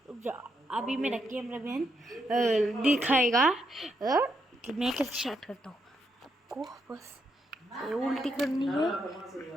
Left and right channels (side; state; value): both; normal; correlation 0.79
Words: रुक जाओ, अभी मेरा कैमरा मैन दिखाएगा कि मैं कैसे स्टार्ट करता हूँ। आपको बस ये उल्टी करनी है।